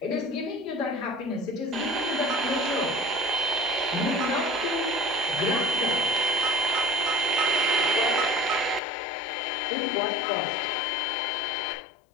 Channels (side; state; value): right; drops out; at 8.8 s